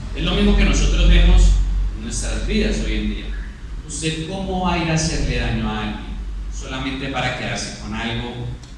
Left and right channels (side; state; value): both; identical; correlation 1.00